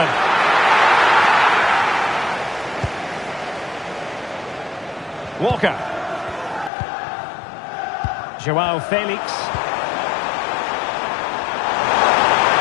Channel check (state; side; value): drops out; right; at 6.7 s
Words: Walker. Joao Felix.